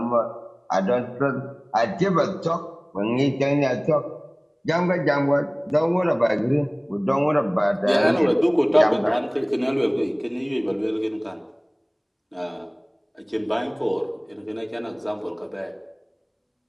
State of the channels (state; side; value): identical; both; correlation 1.00